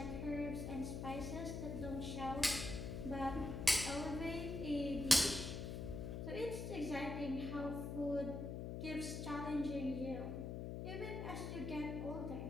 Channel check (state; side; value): noise; left; hum, 4 dB below the sound